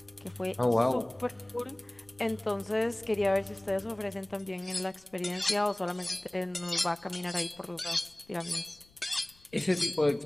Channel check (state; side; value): noise; left; rumble, 29 dB below the sound